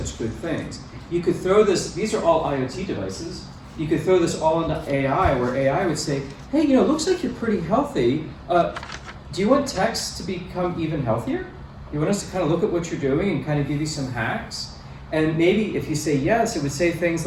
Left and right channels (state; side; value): identical; both; correlation 1.00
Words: good things. You could throw this, these are all IoT devices. You could throw this all into AI, where AI would say, hey, looks like you're pretty healthy. Do you want text to become even healthier? You want us to kind of look at what you're doing and kind of give you some hacks? And maybe if you say yes, it would say things